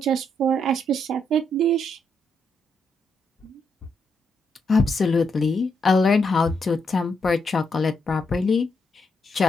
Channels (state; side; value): normal; both; correlation 0.78